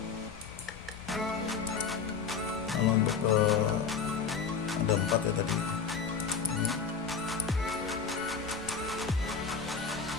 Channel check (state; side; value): quieter; right; 6.0 dB